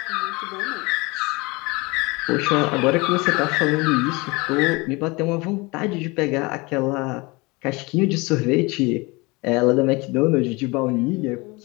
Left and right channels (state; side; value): quieter; right; 25.3 dB